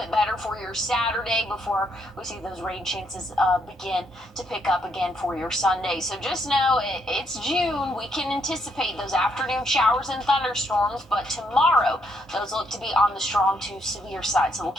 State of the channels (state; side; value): normal; both; correlation 0.74